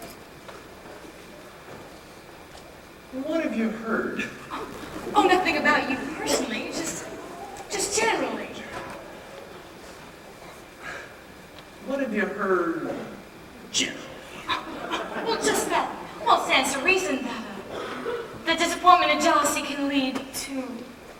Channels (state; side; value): identical; both; correlation 1.00